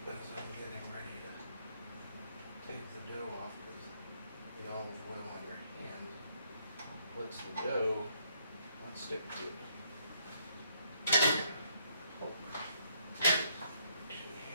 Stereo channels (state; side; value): inverted; both; correlation -0.70